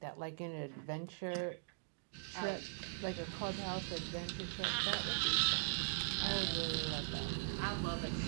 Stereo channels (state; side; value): silent; left; digital silence